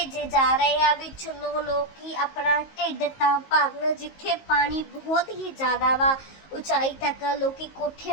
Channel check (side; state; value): right; late; 19 ms